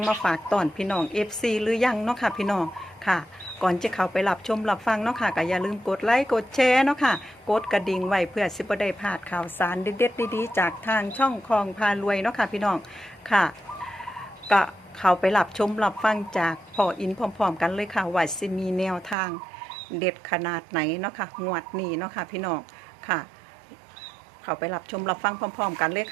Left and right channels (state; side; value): drops out; left; at 19.2 s